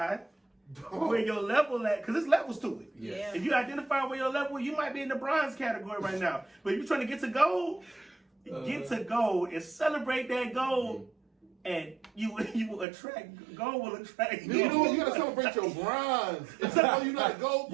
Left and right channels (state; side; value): drops out; left; at 12.9 s